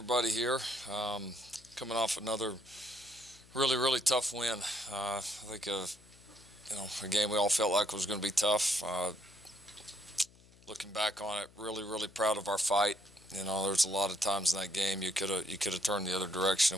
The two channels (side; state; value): left; noise; hum, 26 dB below the sound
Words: here. Coming off another really tough win. I think a game we all felt like was going to be tough. Looking back on it, really proud of our fight. There's a lot of times in that game you could have turned the other direction,